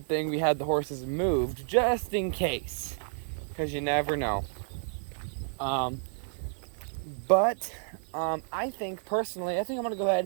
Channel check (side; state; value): left; silent; 58 dB below the other